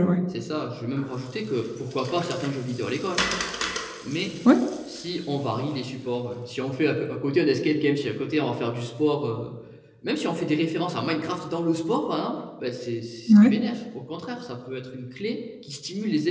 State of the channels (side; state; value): both; identical; correlation 1.00